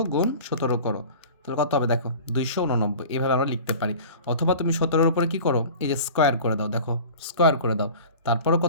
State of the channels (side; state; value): both; inverted; correlation -0.40